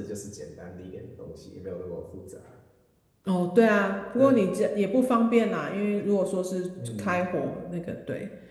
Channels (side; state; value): both; identical; correlation 1.00